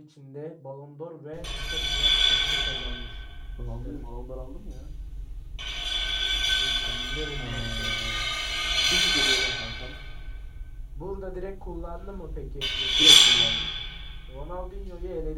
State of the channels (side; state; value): both; identical; correlation 1.00